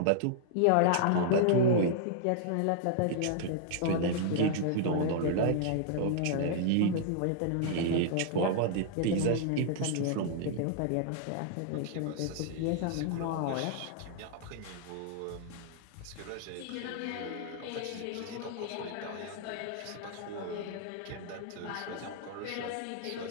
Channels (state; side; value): different; both; correlation -0.01